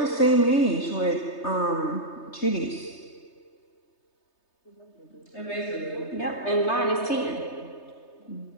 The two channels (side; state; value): right; late; 3.3 ms